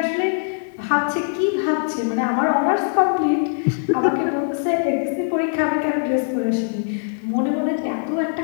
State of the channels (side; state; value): right; silent; digital silence